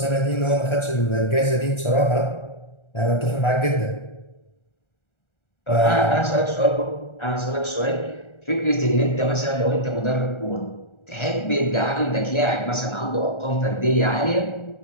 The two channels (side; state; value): right; late; 1.4 ms